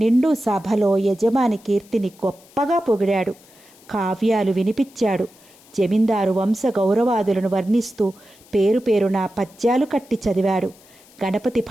సభలో యజమాని కీర్తిని గొప్పగా పొగిడాడు. కావ్యాలు వినిపించాడు. జమీందారు వంశ గౌరవాదులను వర్ణిస్తూ పేరు పేరున పద్యాలు కట్టి చదివాడు. గణపతి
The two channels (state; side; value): noise; left; hiss, 26 dB below the sound